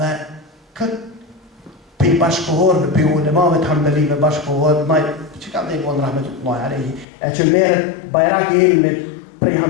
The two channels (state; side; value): drops out; right; at 7.1 s